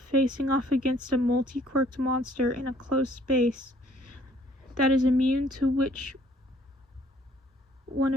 facing off against a multi-quirked monster in a close space that is immune to which one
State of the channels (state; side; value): normal; both; correlation 0.61